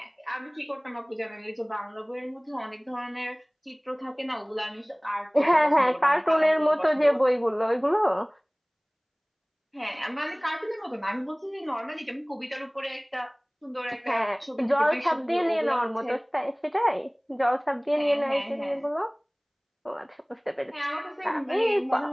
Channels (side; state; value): both; identical; correlation 1.00